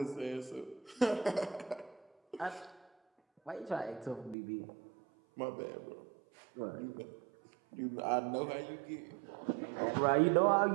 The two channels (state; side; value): drops out; left; at 4.4 s